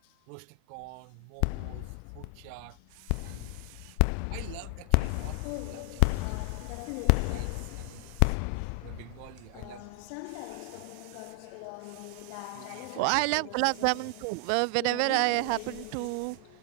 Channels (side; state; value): both; different; correlation 0.00